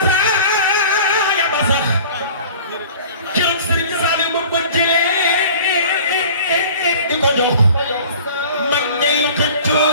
ba sax keroog Sëriñ Saliou ba ko jëlee di ko jox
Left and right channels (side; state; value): both; inverted; correlation -0.44